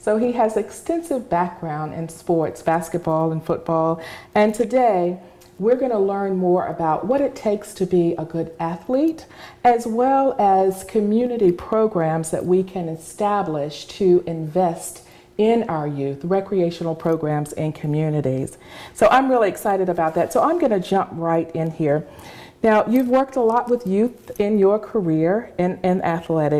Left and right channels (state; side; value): identical; both; correlation 1.00